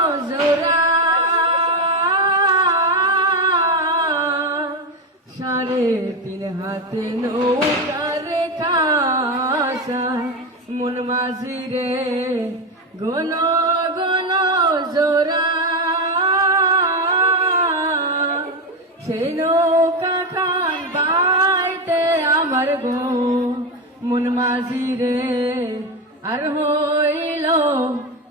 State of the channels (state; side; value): normal; both; correlation 0.13